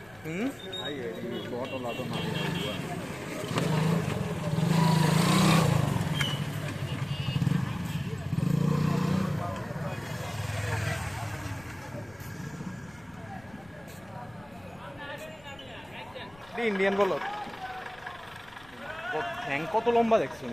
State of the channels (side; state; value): left; noise; rumble, 26 dB below the sound